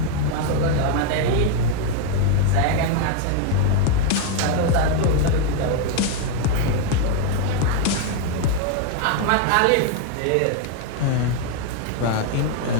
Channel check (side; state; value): both; different; correlation 0.01